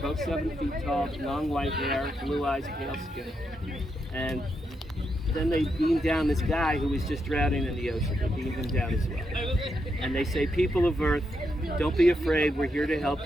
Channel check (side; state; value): both; normal; correlation 0.82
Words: 7 feet tall, long white hair, blue eyes, pale skin. And then they beam down this guy who was just drowning in the ocean. They beam him down as well. And they say, people of Earth, don't be afraid, we're here to